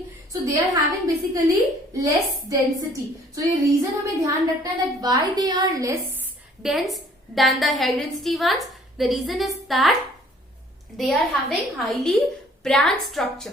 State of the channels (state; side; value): normal; both; correlation 0.57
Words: So they are having basically less density. So ये reason हमें ध्यान रखना है that why they are less dense than the high density ones. The reason is that they are having highly branched